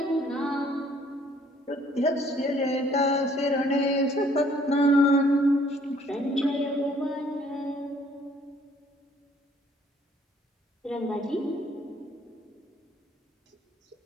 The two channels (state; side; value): normal; both; correlation 0.61